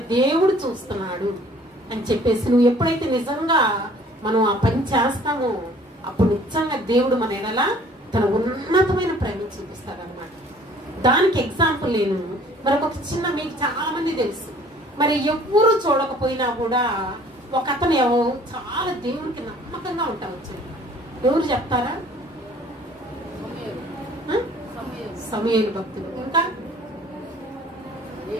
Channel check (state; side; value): normal; both; correlation 0.54